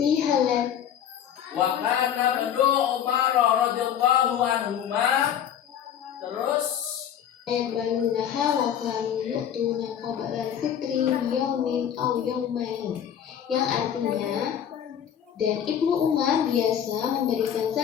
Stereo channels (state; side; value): quieter; right; 9.3 dB